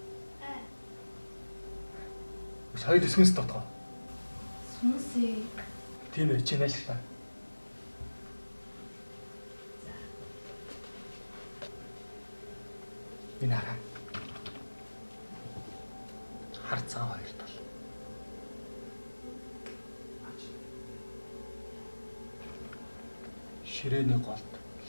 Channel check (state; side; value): inverted; both; correlation -1.00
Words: Сая дэсгэнс дотоо. Сүнсээ. Тийм ээ, чи нааштай. Энэ хараа. Харцаа хоёр тал. Ширээний голд